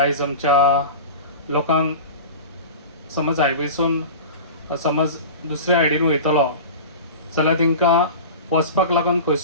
आमच्या लोकांक समज हायवेसून समज दुसऱ्या सायडीन वयतलो जाल्यार तांकां वचपाक लागून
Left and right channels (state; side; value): inverted; both; correlation -0.32